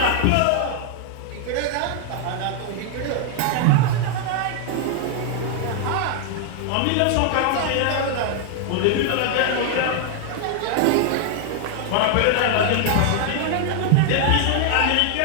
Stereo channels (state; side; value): different; both; correlation 0.00